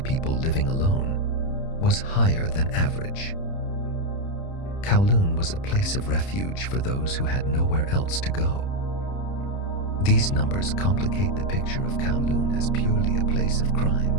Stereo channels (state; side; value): late; right; 30 ms